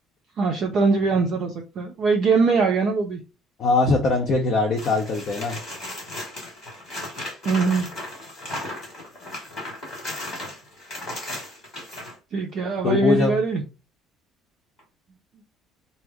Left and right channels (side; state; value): both; normal; correlation 0.60